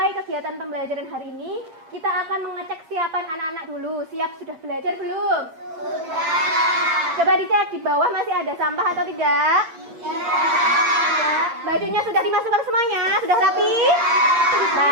kegiatan pembelajaran hari ini, kita akan mengecek siapan anak-anak dulu. Siap sudah belajar belum? Sudah. Coba dicek di bawah masih ada sampah atau tidak? Tidak. Bajunya sudah dimasukkan semuanya? Sudah rapi?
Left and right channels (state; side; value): late; left; 8.8 ms